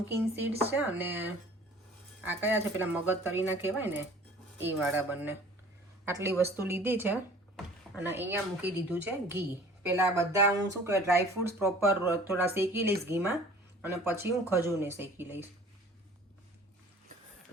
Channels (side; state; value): both; normal; correlation 0.48